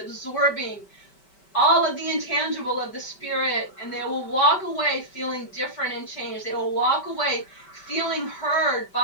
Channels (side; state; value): right; late; 5.2 ms